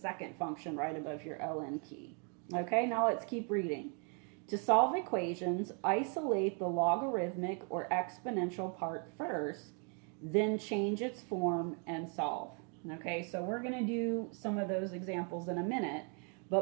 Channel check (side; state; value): left; quieter; 38.5 dB